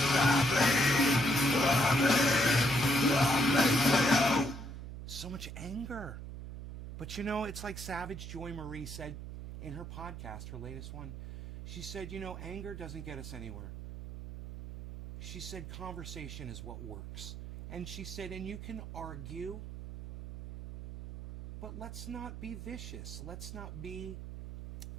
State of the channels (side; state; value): right; noise; hum, 9 dB below the sound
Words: much anger. But you know, it's like Savage Joy Marie said in her podcast, her latest one. She said, you know, anger doesn't get us anywhere. She said conversation is what works. And she said, and you can argue, but let's not be vicious. Let's not be